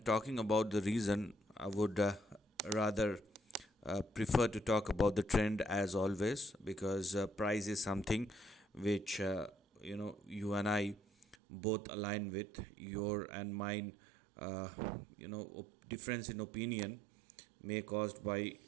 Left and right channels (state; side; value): drops out; left; at 11.4 s